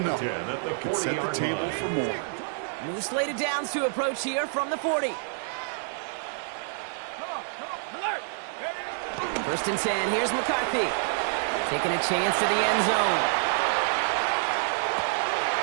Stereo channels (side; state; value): left; silent; 59 dB below the other